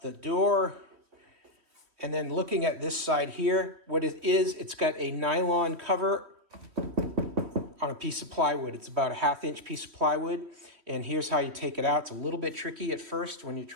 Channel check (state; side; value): late; left; 3.1 ms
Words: the door. And then looking at this side here, what it is, it's got a nylon cover on a piece of plywood. It's about a 1/2 inch piece of plywood. And here's how you take it out. It's a little bit tricky at first when you